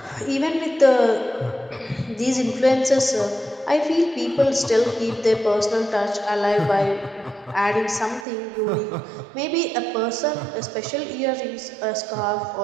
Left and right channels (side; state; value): left; drops out; at 8.2 s